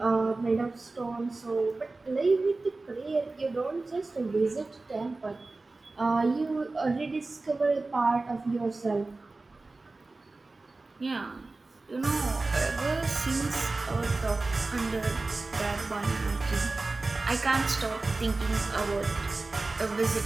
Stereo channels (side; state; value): left; quieter; 3.4 dB